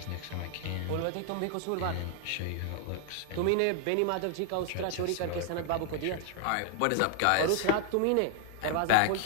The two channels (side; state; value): both; different; correlation -0.01